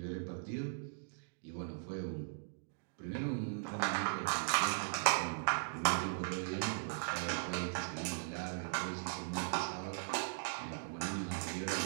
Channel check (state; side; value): silent; left; digital silence